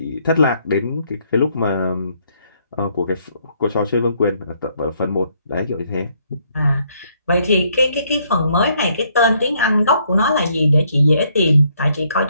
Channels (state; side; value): inverted; both; correlation -0.70